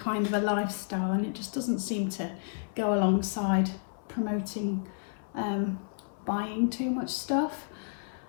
of a lifestyle, and it just doesn't seem to go alongside promoting buying too much stuff,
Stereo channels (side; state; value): right; silent; 57 dB below the other